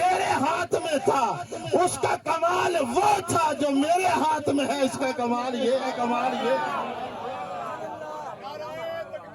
ہاتھ میں تھا اس کا کمال وہ تھا جو میرے ہاتھ میں ہے، اس کا کمال یہ ہے، کمال یہ ہے۔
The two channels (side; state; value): both; identical; correlation 1.00